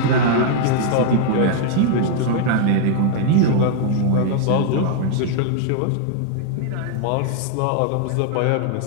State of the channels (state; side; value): different; both; correlation 0.00